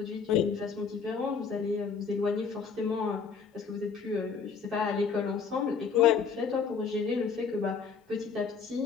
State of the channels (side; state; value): right; quieter; 5.9 dB